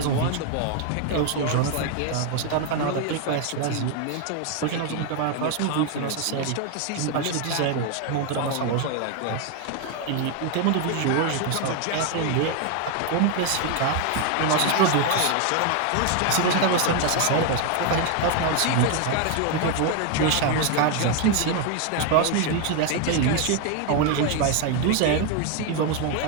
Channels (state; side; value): different; both; correlation 0.01